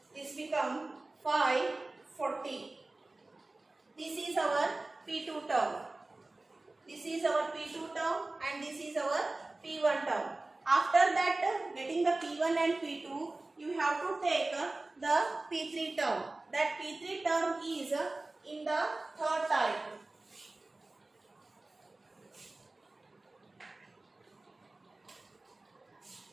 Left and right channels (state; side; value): quieter; left; 3.0 dB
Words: this become 540. This is our P2 term. This is our P2 term and this is our P1 term. After that, getting the P1 and P2, you have to take the P3 term. That P3 term is in the third type.